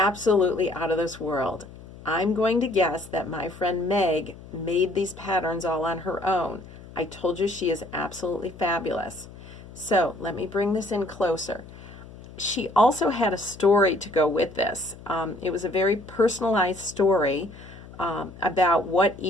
out of this world. I'm going to guess that my friend Meg made these patterns all on her own. I told you she is absolutely fabulous. So let me bring this in closer. She also had a story to go with this. It was a very personalized story about what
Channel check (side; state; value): left; noise; hum, 18 dB below the sound